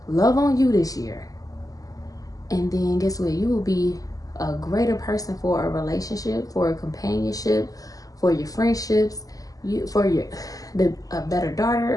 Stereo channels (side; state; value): right; late; 0.17 ms